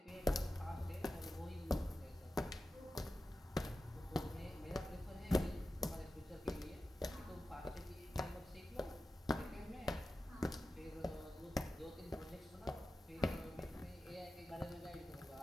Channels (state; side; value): normal; both; correlation 0.93